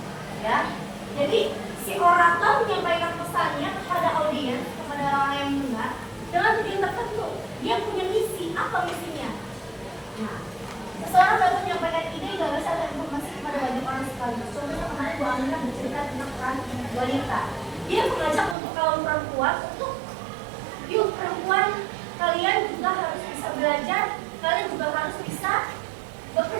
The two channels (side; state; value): left; drops out; at 18.6 s